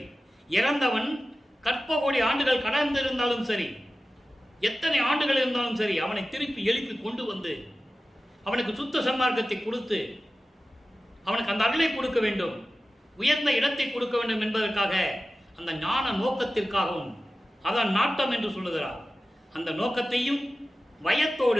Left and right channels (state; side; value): normal; both; correlation 0.95